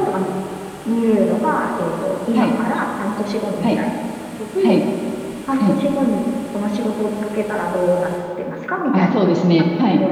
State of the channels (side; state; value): both; identical; correlation 1.00